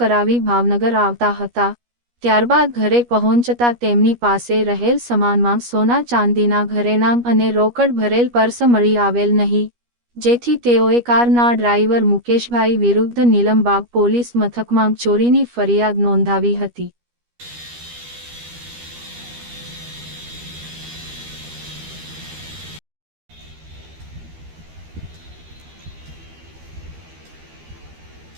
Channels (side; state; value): left; late; 13 ms